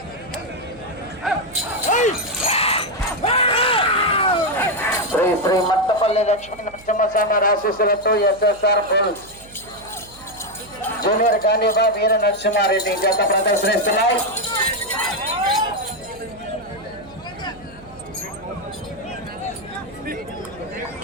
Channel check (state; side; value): noise; right; hum, 23 dB below the sound